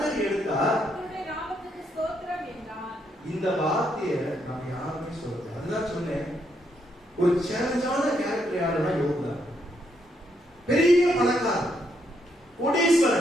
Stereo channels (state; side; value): normal; both; correlation 0.76